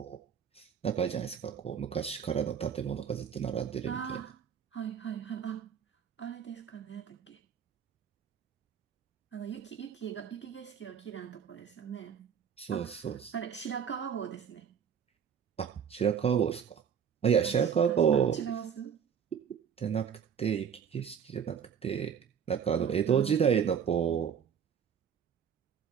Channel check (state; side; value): quieter; left; 7.6 dB